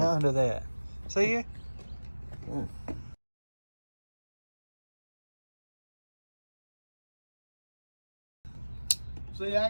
that. See you? See,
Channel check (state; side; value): inverted; both; correlation -1.00